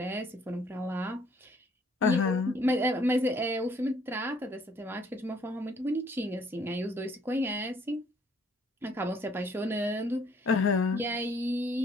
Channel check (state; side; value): normal; both; correlation 0.63